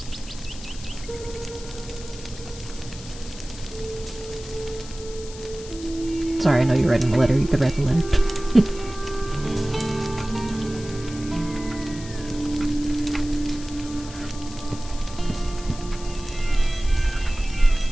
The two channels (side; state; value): left; noise; hiss, 15 dB below the sound